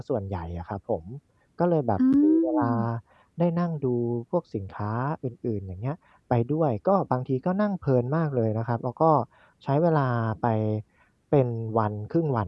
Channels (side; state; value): both; identical; correlation 1.00